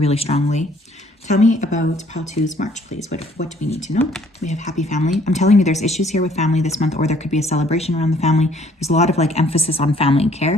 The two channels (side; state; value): both; normal; correlation 0.61